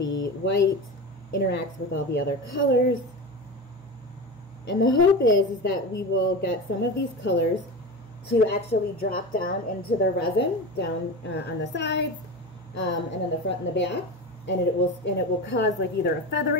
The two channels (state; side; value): normal; both; correlation 0.26